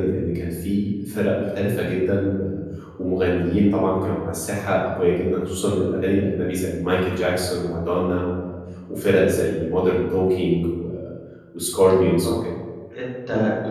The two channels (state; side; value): identical; both; correlation 1.00